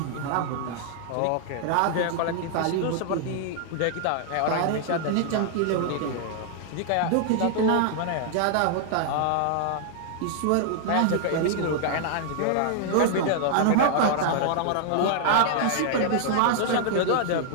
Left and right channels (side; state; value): both; different; correlation -0.01